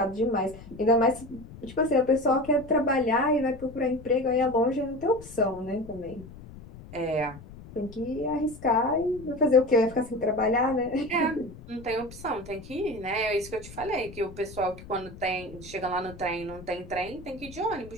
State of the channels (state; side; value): noise; left; rumble, 17 dB below the sound